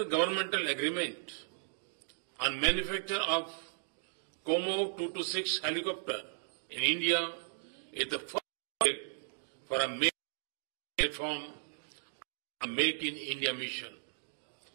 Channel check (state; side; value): silent; left; digital silence